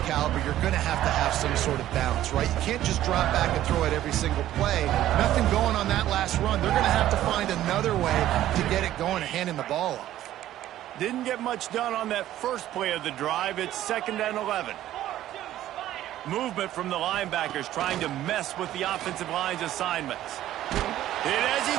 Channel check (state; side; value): quieter; left; 13.2 dB